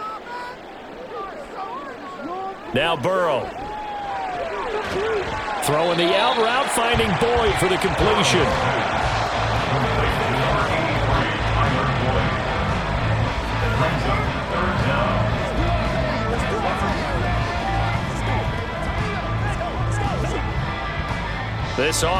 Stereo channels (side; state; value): both; identical; correlation 1.00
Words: Now Burrow. Throwing the out route, finding Boyd for the completion. This